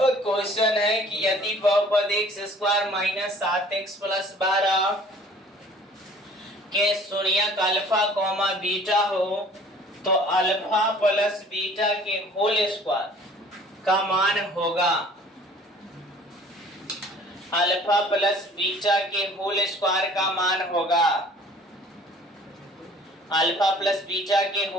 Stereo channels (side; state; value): both; normal; correlation 0.51